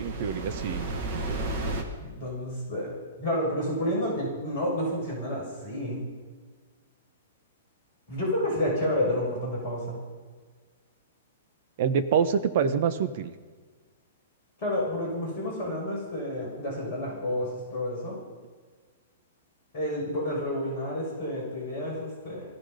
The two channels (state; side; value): inverted; both; correlation -0.36